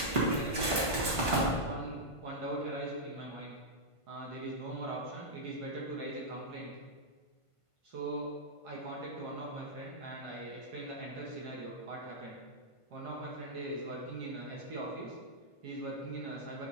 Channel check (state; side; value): late; right; 1.5 ms